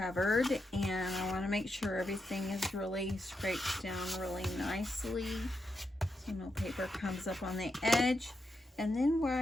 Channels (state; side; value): normal; both; correlation 0.85